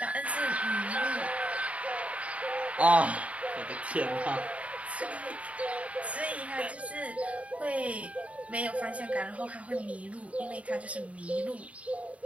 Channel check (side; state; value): left; late; 0.066 ms